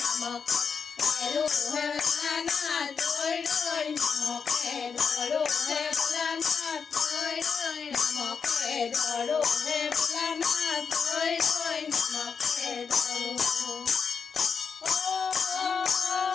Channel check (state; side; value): quieter; right; 5.9 dB